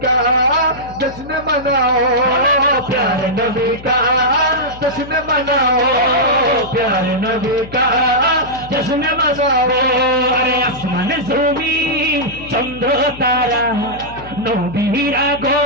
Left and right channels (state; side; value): noise; left; hum, 17 dB below the sound